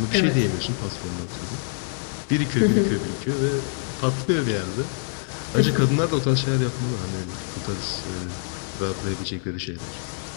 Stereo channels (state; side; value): silent; right; digital silence